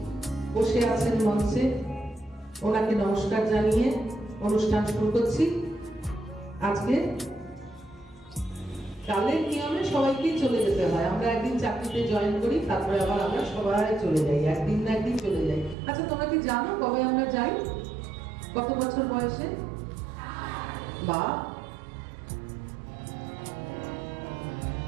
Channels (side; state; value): left; drops out; at 15.8 s